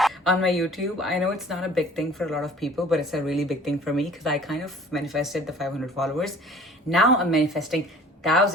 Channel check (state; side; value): normal; both; correlation 0.49